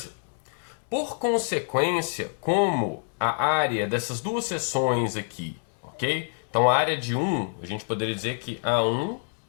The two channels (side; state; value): right; silent; 60 dB below the other